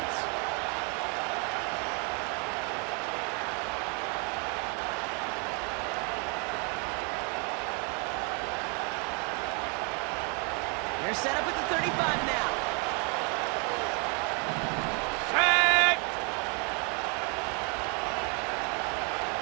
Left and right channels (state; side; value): quieter; left; 35.1 dB